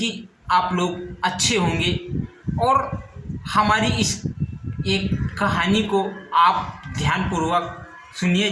आप लोग अच्छे होंगे और हमारी इस एक कहानी को आप ध्यानपूर्वक सुनिए,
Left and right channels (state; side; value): identical; both; correlation 1.00